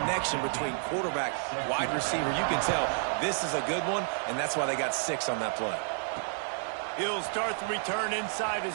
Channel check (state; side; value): silent; left; digital silence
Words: between quarterback, wide receiver, you can tell this is a good one, and that's why they got 6 on that play. He'll start the return inside